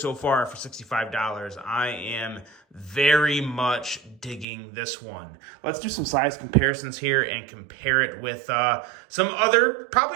far for $65. I am very much digging this one. Let's do some size comparisons here and compare it with some other,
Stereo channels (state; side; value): drops out; left; at 4.5 s